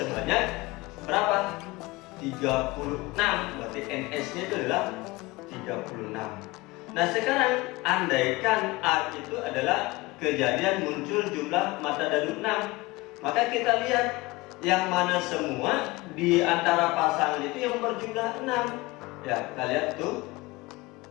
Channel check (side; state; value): right; quieter; 21.7 dB